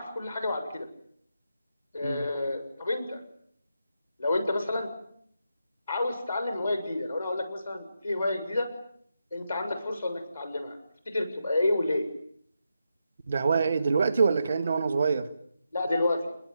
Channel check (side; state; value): both; inverted; correlation -0.84